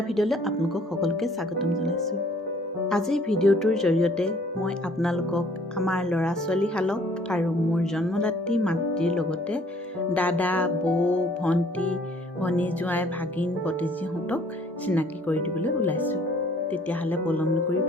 ভিডিঅ'লৈ আপোনালোকক সকলোকে স্বাগতম জনাইছোঁ। আজিৰ ভিডিঅ'টোৰ জৰিয়তে মই আপোনালোকক আমাৰ ল'ৰা ছোৱালীহালক আৰু মোৰ জন্মদাত্ৰী মাতৃৰ লগতে দাদা, বৌ, ভণ্টি, ভনী জোঁৱাই, ভাগিন, ভতিজীহঁতক চিনাকি কৰি দিবলৈ ওলাইছোঁ। তেতিয়াহ'লে পলম নকৰি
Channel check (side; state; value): both; normal; correlation 0.58